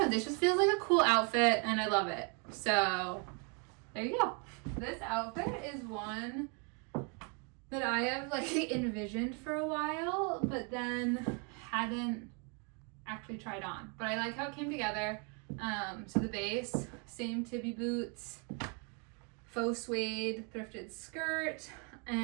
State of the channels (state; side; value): quieter; left; 36.2 dB